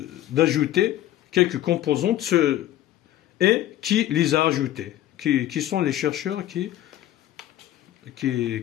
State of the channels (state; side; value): quieter; right; 13.4 dB